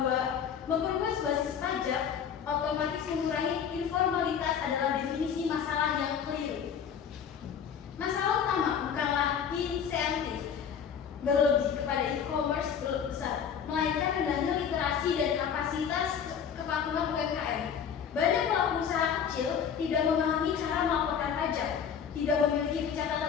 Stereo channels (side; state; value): right; quieter; 7.7 dB